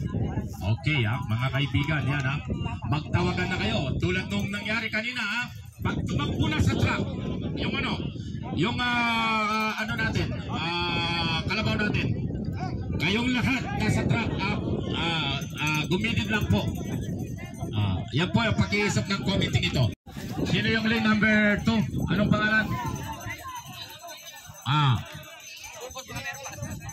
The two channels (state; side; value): identical; both; correlation 1.00